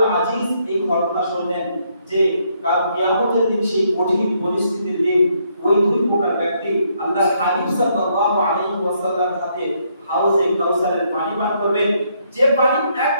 আজিজ এই ঘটনা শুনলেন যে কাল কিয়ামতের দিন সেই কঠিন পরিস্থিতির দিন ওই দুই প্রকার ব্যক্তি আল্লাহর হাবিব সাল্লাল্লাহু আলাইহি ওয়াসাল্লামের হাতে হাউজে কাউসারের পানি পান করবেন, যে পানি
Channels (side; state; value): both; inverted; correlation -0.72